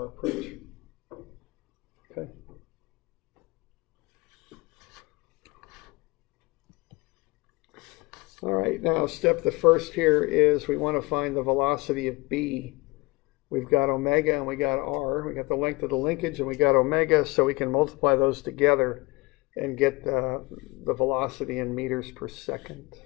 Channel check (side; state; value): right; quieter; 24.2 dB